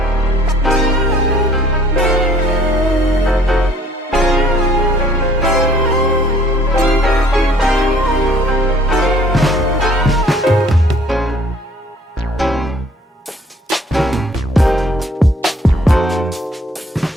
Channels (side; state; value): both; normal; correlation 0.57